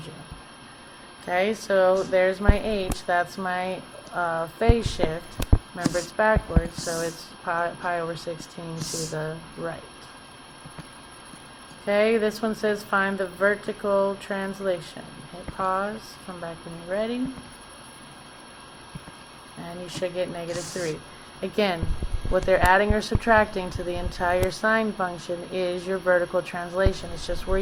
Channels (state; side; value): identical; both; correlation 1.00